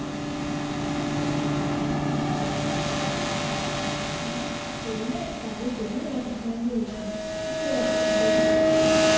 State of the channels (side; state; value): both; identical; correlation 1.00